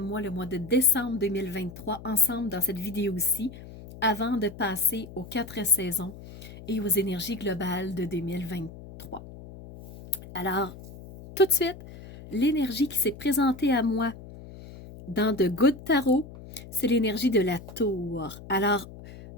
le mois de décembre 2023, ensemble dans cette vidéo-ci, avant de passer aux 4 saisons et aux énergies globales de 2023. Alors, tout de suite, l'énergie qui s'est présentée à moi dans The Good Tarot, c'est l'énergie de la tour. Alors,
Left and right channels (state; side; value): noise; left; hum, 16 dB below the sound